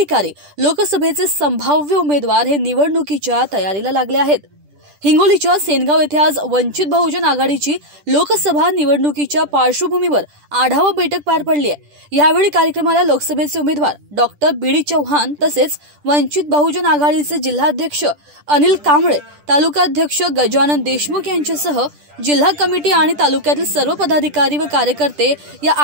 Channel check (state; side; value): late; left; 10 ms